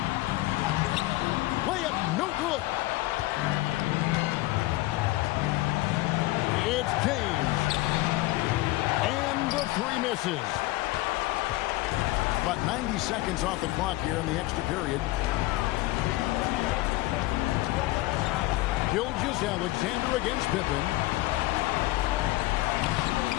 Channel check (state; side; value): quieter; right; 18.9 dB